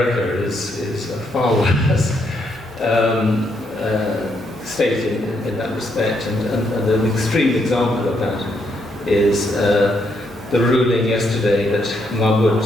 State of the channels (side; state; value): both; normal; correlation 0.76